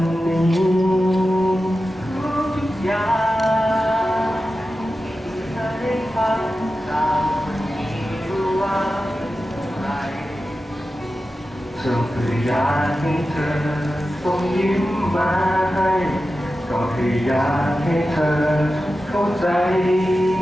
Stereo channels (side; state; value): both; normal; correlation 0.93